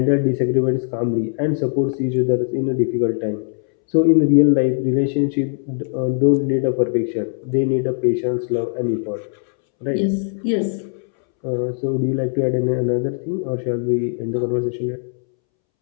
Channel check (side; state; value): right; silent; 66 dB below the other